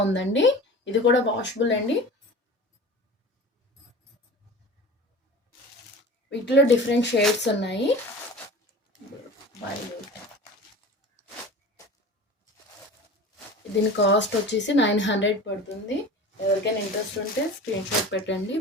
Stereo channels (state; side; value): normal; both; correlation 0.37